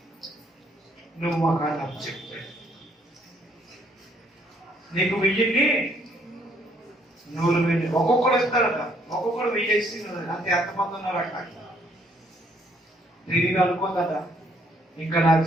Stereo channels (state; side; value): normal; both; correlation 0.67